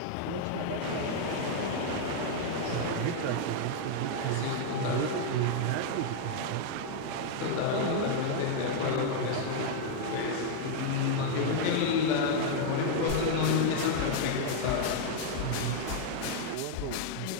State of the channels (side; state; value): both; different; correlation 0.00